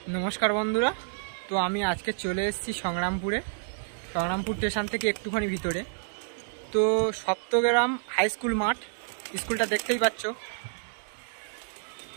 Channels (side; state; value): left; silent; digital silence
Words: নমস্কার বন্ধুরা, তো আমি আজকে চলে এসেছি সংগ্রামপুর স্টেশন থেকে একটুখানি ভিতরে। তো সপ্তগ্রাম হাই স্কুল মাঠ, স্কুলটা দেখতেই পাচ্ছ